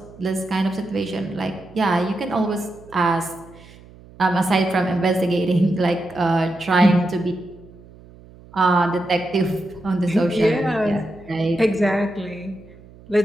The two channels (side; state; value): right; noise; hum, 22 dB below the sound